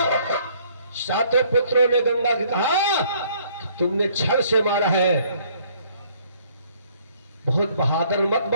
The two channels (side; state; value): both; inverted; correlation -0.62